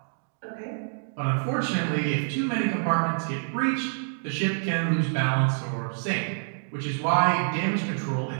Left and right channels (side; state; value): left; silent; digital silence